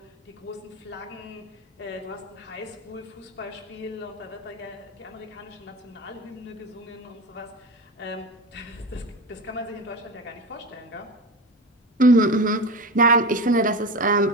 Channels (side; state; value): both; normal; correlation 0.25